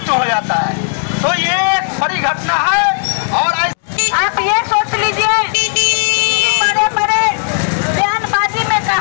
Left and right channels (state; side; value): silent; right; digital silence